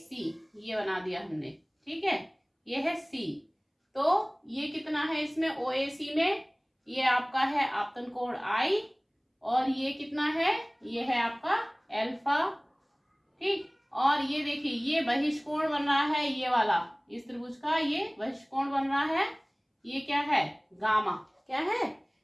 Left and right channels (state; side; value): identical; both; correlation 1.00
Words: ये बना दिया हमने। ठीक है, ये है C। तो ये कितना है इसमें OAC में, ये आपका है आपतन कोण I और ये कितना है, ये है आपका अल्फा। ठीक, और ये देखिए ये बहिष्कोण बन रहा है, ये वाला इस त्रिभुज का ये बहिष्कोण बन रहा है, ये क्या है गामा, क्या है